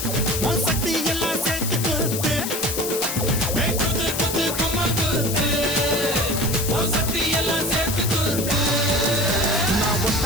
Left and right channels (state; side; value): noise; left; hiss, 4 dB below the sound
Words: உன் சக்தி எல்லாம் சேர்த்து குத்து குத்து குத்து கும்மா குத்து உன் சக்தி எல்லாம் சேர்த்து குத்து நான்